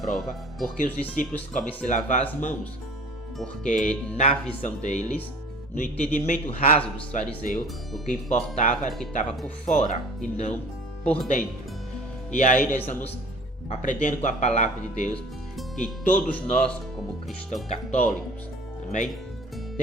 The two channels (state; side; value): normal; both; correlation 0.46